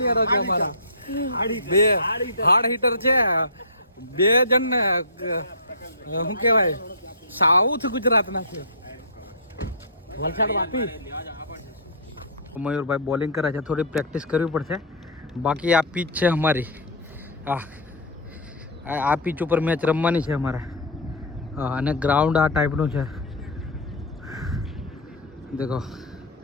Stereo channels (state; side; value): normal; both; correlation -0.18